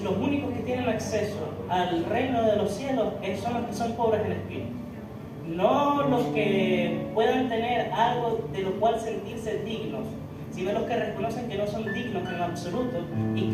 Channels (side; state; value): both; identical; correlation 1.00